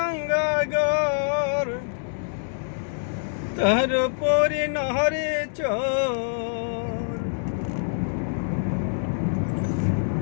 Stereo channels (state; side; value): silent; right; digital silence